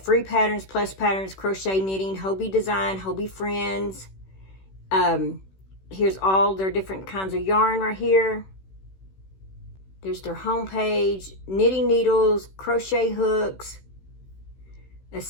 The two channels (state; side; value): late; right; 16 ms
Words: free patterns, plus patterns, crochet knitting, Hobbii design, Hobbii friends. Here's all their different kinds of yarn right here. There's their homepage, knitting needles, crochet hooks,